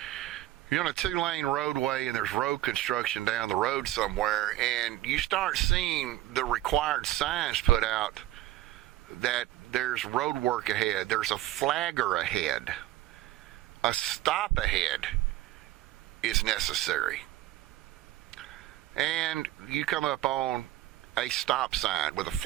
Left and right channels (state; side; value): quieter; left; 15.3 dB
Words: You're on a 2-lane roadway and there's road construction down the road somewhere, and you start seeing the required signs put out that there's road work ahead, there's a flagger ahead, a stop ahead is necessary. And you come up on a stop sign with a